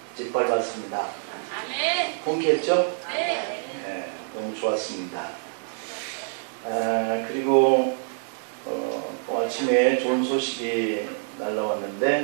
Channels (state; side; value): silent; left; 61 dB below the other